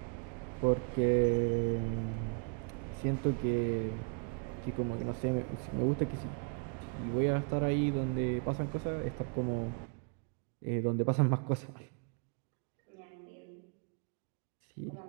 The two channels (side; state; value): left; quieter; 38.3 dB